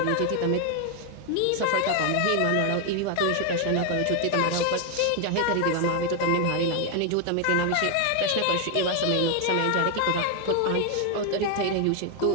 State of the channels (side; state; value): both; different; correlation 0.01